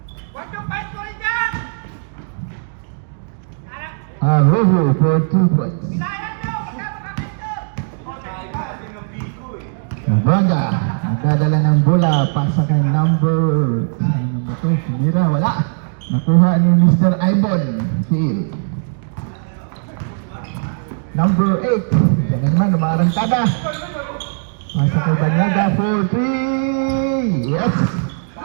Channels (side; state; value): left; silent; digital silence